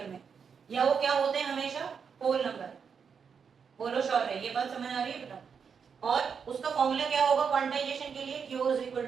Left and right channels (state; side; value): quieter; left; 6.4 dB